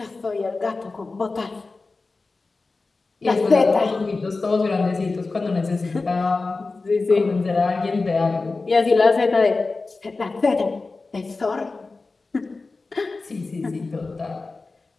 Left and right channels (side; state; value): right; quieter; 3.7 dB